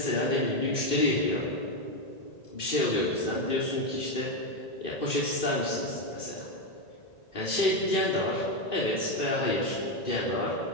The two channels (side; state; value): right; late; 1.9 ms